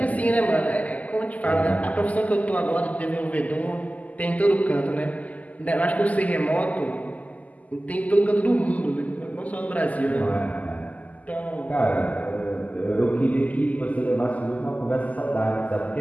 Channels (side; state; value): right; late; 0.075 ms